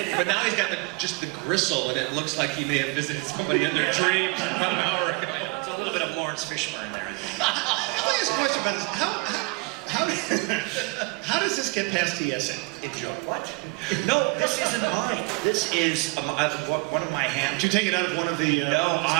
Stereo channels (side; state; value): left; quieter; 28.7 dB